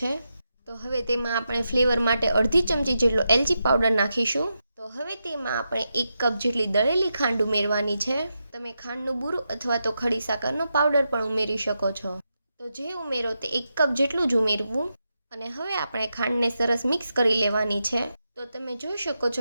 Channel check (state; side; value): inverted; both; correlation -0.87